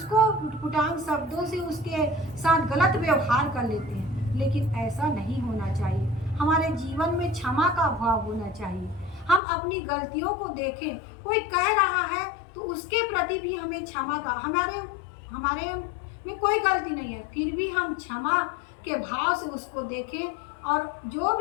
उटपुटांग शब्दों से उसके साथ गलत व्यवहार कर लेते हैं। लेकिन ऐसा नहीं होना चाहिए। हमारे जीवन में क्षमा का भाव होना चाहिए। हम अपनी गलतियों को देखें, कोई कह रहा है तो उसके प्रति भी हमें क्षमा का, हमारे में कोई गलती नहीं है, फिर भी हम क्षमा के भाव से उसको देखें और जो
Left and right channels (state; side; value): drops out; right; at 9.4 s